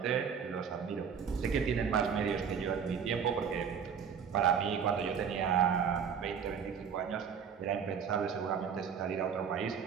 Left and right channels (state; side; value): quieter; left; 7.0 dB